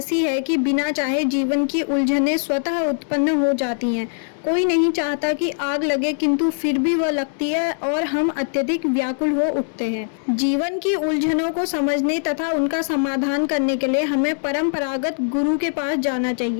है कि बिना चाहे जीवन की उलझनें स्वतः उत्पन्न हो जाती हैं। कोई नहीं चाहता कि आग लगे, किंतु फिर भी वह लगती है और हम अत्यधिक व्याकुल हो उठते हैं। जीवन की उलझनों को समझने तथा उनका समाधान करने के लिए हमें परंपरागत गुरु के पास जाना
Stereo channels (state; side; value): silent; right; digital silence